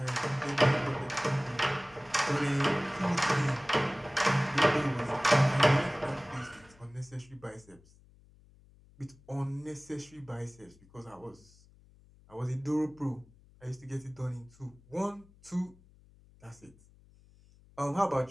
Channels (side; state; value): left; noise; hum, 27 dB below the sound